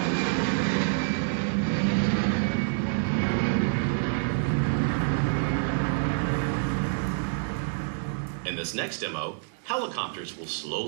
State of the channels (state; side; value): silent; left; digital silence